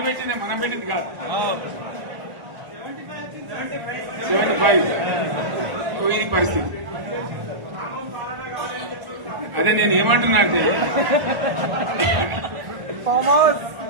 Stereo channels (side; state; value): left; late; 1.0 ms